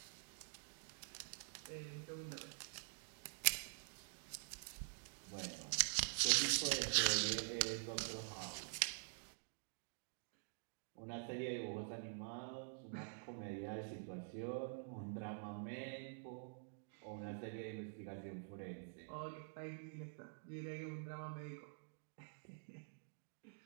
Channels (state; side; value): silent; left; digital silence